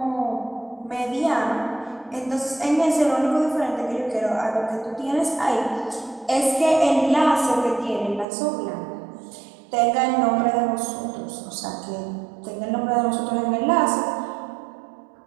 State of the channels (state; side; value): drops out; left; at 8.2 s